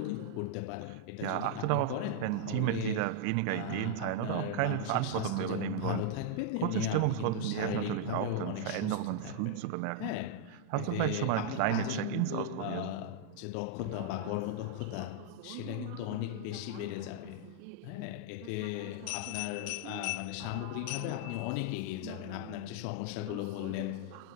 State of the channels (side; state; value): both; different; correlation -0.01